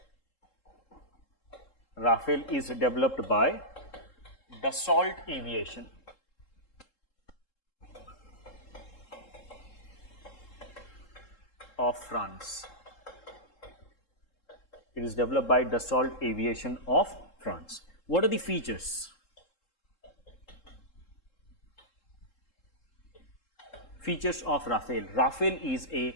Rafale is developed by Dassault Aviation. Of France. It is developed by Dassault Aviation of France. What are the features? Features of Rafale. Rafale is a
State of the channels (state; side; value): late; right; 3.7 ms